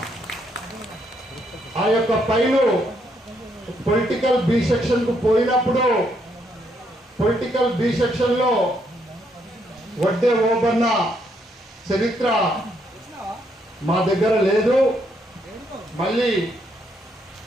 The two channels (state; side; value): normal; both; correlation 0.74